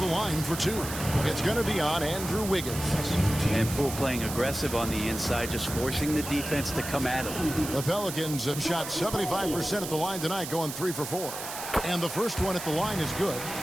line for 2. It's going to be on Andrew Wiggins. And Poole playing aggressive on the inside, just forcing the defense to come at him. The Pelicans have shot 75% at the line tonight, going 3 for 4. And the first one at the line is good.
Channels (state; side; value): noise; right; hiss, 8 dB below the sound